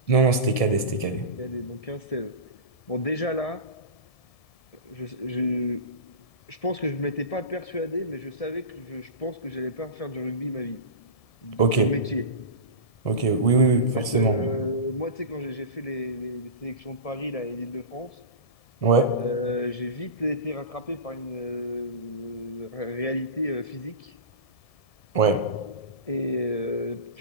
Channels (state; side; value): late; right; 1.7 ms